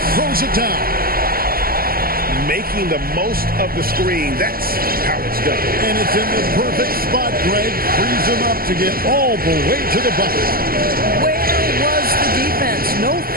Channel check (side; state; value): left; late; 0.43 ms